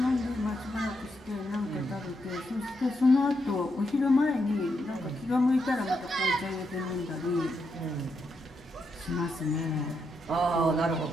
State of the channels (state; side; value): normal; both; correlation 0.82